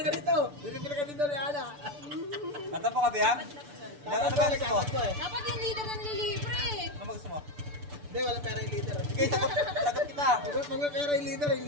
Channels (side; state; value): left; late; 6.9 ms